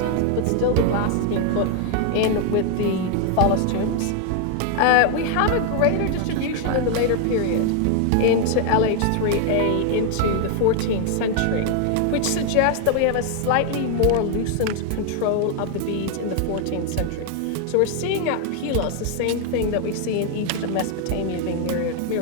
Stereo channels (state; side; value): different; both; correlation 0.00